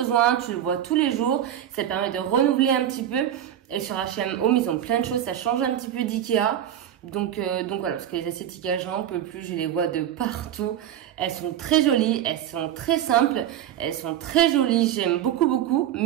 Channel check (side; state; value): left; quieter; 10.9 dB